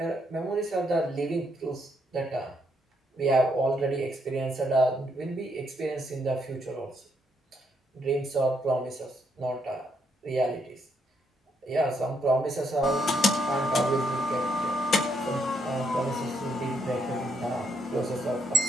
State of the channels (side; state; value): both; normal; correlation 0.75